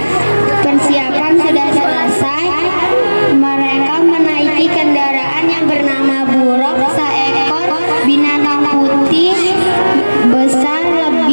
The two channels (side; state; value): both; inverted; correlation -1.00